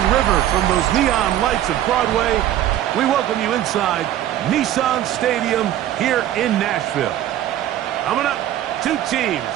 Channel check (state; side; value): quieter; left; 12.4 dB